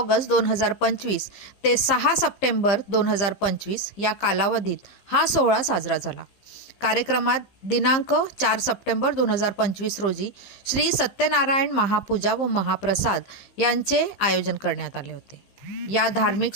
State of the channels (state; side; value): late; right; 15 ms